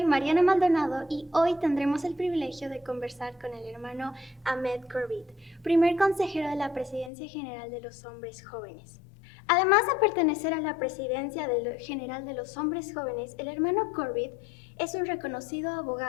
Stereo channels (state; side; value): drops out; right; at 7.1 s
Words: Mariana Maldonado y hoy tendremos el privilegio de conversar con el hermano Ahmed Corbett, primer consejero de la Presidencia General de los Hombres Jóvenes. Además de pertenecer a la Presidencia General de los Hombres Jóvenes, el hermano Corbett es un reconocido